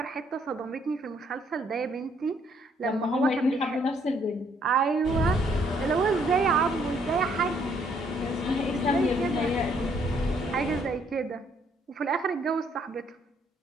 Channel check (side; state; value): both; normal; correlation 0.68